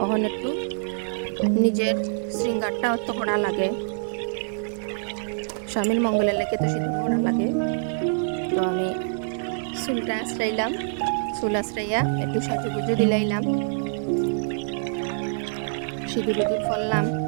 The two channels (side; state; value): left; silent; digital silence